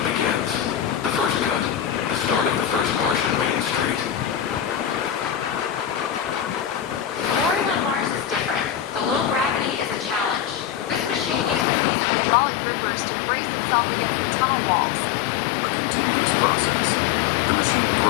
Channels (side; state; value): right; drops out; at 11.7 s